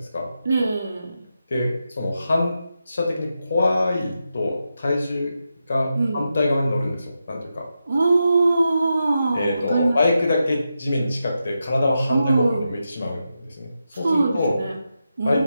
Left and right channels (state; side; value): inverted; both; correlation -0.87